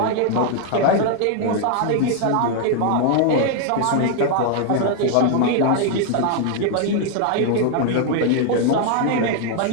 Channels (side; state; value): both; different; correlation 0.00